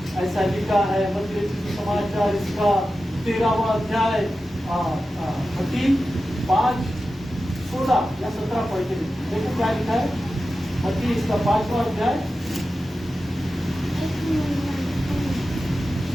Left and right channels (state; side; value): normal; both; correlation 0.93